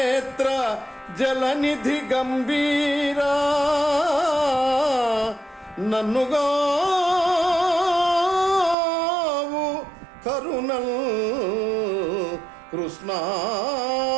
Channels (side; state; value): left; drops out; at 8.8 s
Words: జలనిధి గంభీరా, నన్నుగావు కరుణల్ కృష్ణ.